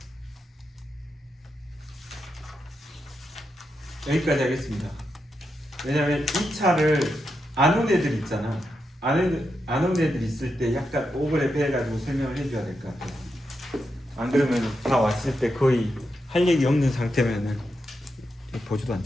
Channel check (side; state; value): both; normal; correlation 0.85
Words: 여기까지 하겠습니다. 왜냐면 이 차를 안 온 애들 있잖아. 안 온 애들 있을 때 약간 오버랩 해가지고 설명을 해줘야 될 것 같아. 안 그러면 다 왔을 때 거의 할 얘기 없는 상태면은 보지도